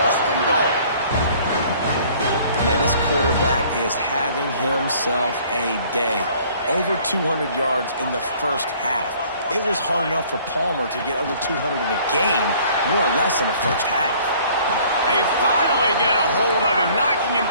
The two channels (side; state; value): both; inverted; correlation -0.55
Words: and goal. Man, this quarterback is having himself a day. Over 200 yards in the first half. It was hard enough for Palmer to get over 200 in a game, more or less in the first half. They finally get a hold of him, knocking him